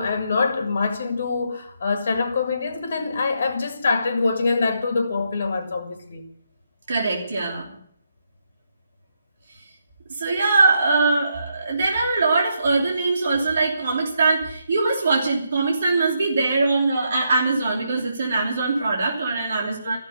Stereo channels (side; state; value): both; inverted; correlation -0.79